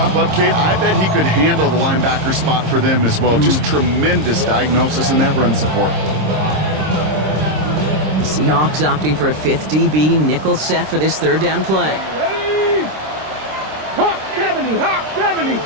up, Kate, I bet he could handle the linebacker spot for them as well. Just tremendous diagnosis in that run support. The Seahawks opting for a fifth DB nickel set for this third down play. Ready? Hawk 70, Hawk 70.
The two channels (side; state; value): left; late; 26 ms